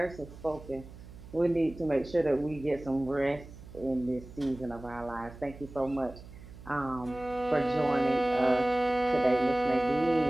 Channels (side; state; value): right; noise; hum, 17 dB below the sound